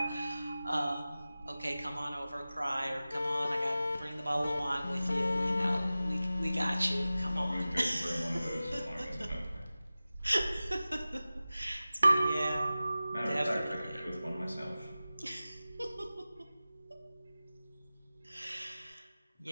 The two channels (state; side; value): inverted; both; correlation -0.96